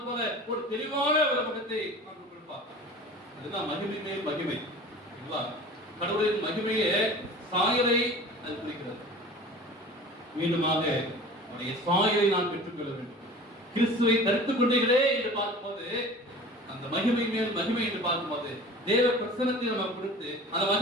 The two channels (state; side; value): normal; both; correlation 0.40